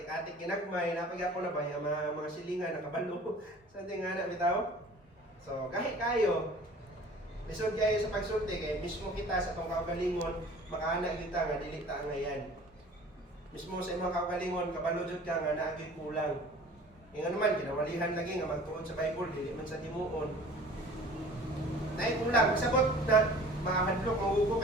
ginagmay, napaghapon na ba yung mga silingan nakabalo sa ating nga bitaw. So kahit kayo lisod kayo sa pagsulti kay mismo kita sa tong kaugalingon makaana kita nga dili ta ngayan. Mismo sa imong kaugalingon kabalo jud ka nga naagi kulang. Ingon naman kinawalihan lagi nga magtuon sa Bible dili man sa timuon. Nay kulang sabot na mahadlok maugo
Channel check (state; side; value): normal; both; correlation 0.46